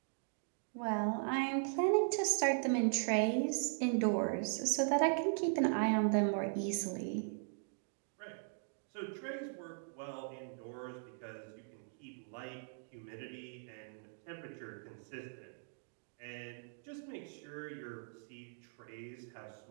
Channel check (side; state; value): left; silent; digital silence